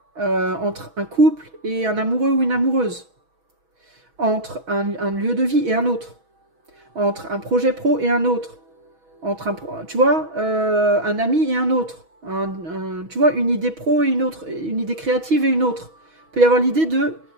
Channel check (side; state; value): left; late; 6.2 ms